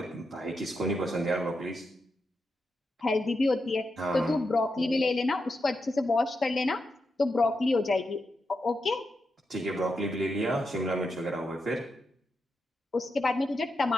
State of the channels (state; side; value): normal; both; correlation 0.86